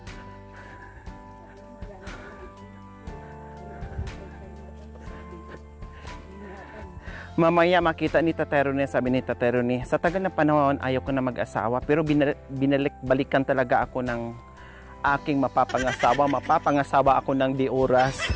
Mamaya makita ni Tatay Ronnie, sabi ni Tatay Ronnie, sa tagal na panahon ayaw ko na mag-asawa, pero binalik-balikan talaga ako ng aking mapapangasawa ako ng di oras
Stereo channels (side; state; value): both; identical; correlation 1.00